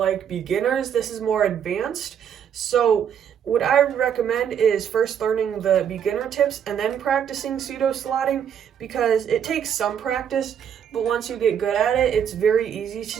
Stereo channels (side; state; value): left; quieter; 8.5 dB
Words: beginners. This is more advanced. So what I recommend is first learning the beginner tips and then practicing pseudoslotting, because it takes some practice, but once you get good at it, it's very easy to